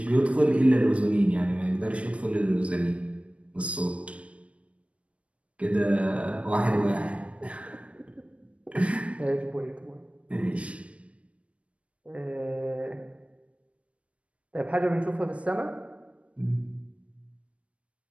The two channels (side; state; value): left; late; 0.063 ms